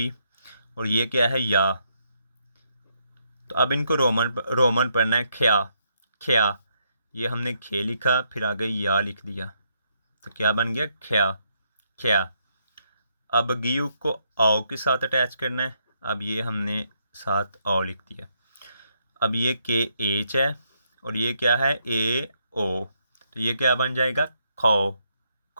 और ये क्या है, या। तो अब इनको रोमन पढ़ना है, ख्या। ख्या। ये हमने खे लिखा, फिर आगे या लिख दिया, तो क्या बन गया, ख्या। ख्या। अब गियू को आओ के साथ अटैच करना है। अब ये हमने साथ आओ लिख दिया। अब ये के एच है और ये क्या है, ए ओ। तो ये क्या बन जाएगा, खो।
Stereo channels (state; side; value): inverted; both; correlation -0.76